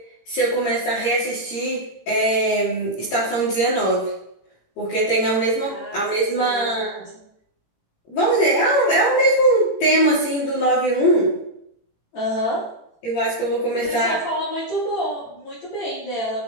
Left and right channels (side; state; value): right; late; 18 ms